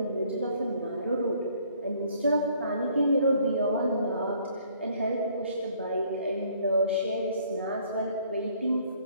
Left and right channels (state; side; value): inverted; both; correlation -0.62